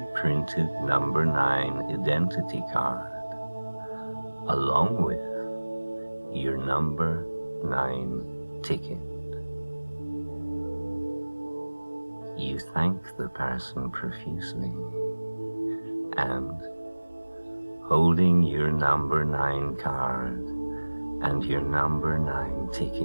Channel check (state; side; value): inverted; both; correlation -1.00